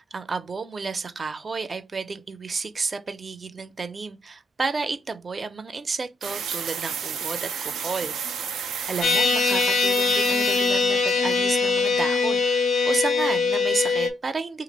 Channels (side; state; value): both; normal; correlation 0.76